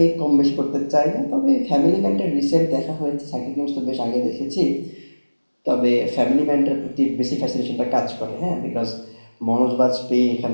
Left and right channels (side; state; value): both; inverted; correlation -1.00